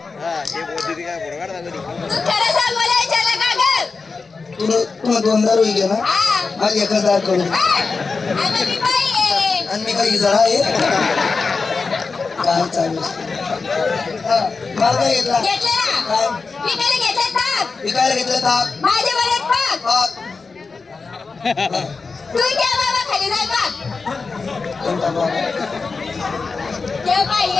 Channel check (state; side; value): quieter; right; 4.4 dB